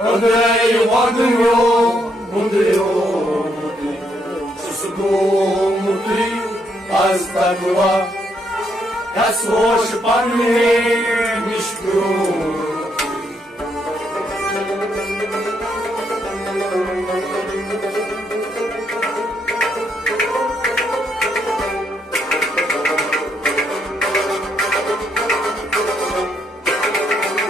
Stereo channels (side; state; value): both; normal; correlation 0.75